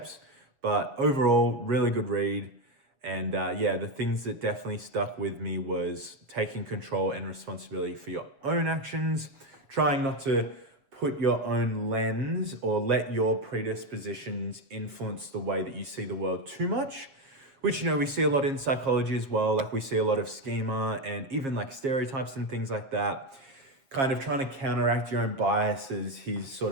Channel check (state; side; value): late; left; 7.2 ms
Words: but overall, really good read. And yeah, the things that definitely stuck with me was taking control and responsibility for your own actions, trying not to put your own lens or let your predispositions influence the way that you see the world too much, which, we see a lot in psychology as well. Like we see a lot of schema and even like stereotypes and things like that, kind of trying to counteract your own biases. He's sort